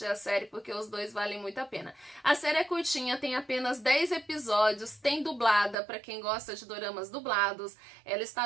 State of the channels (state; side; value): drops out; left; at 5.8 s